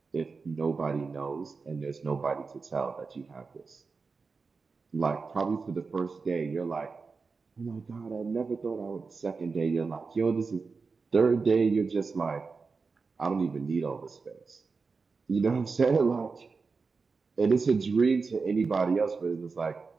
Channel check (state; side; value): quieter; left; 4.6 dB